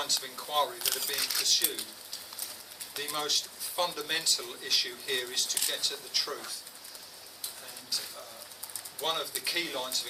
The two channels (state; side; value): identical; both; correlation 1.00